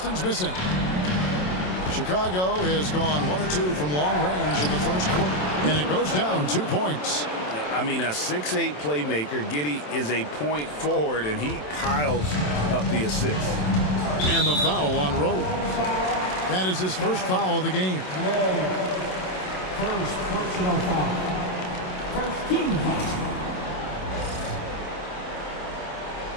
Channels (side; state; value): right; late; 27 ms